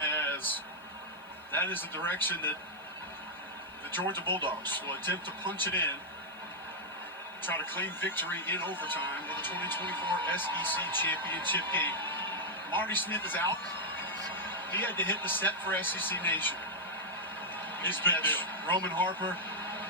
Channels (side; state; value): left; noise; hiss, 30 dB below the sound